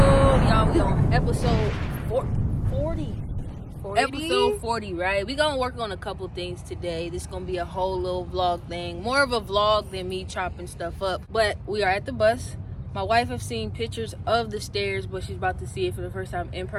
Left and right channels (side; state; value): both; identical; correlation 1.00